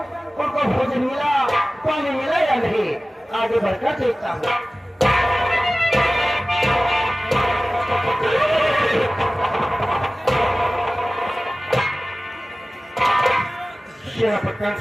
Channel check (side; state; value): both; normal; correlation 0.97